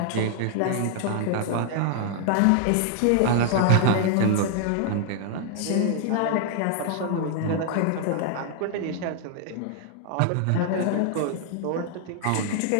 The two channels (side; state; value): both; different; correlation 0.00